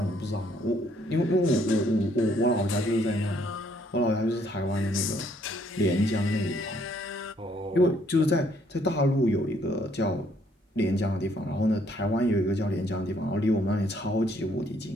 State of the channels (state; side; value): normal; both; correlation 0.67